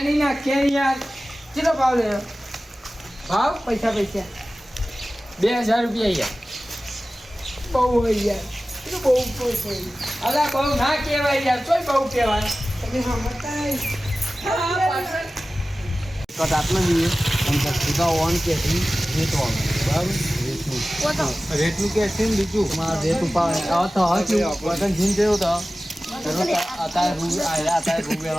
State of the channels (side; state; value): both; normal; correlation 0.96